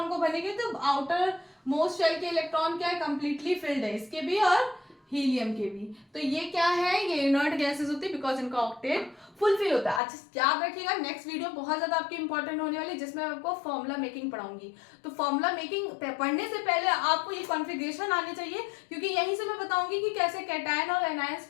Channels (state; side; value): drops out; right; at 10.0 s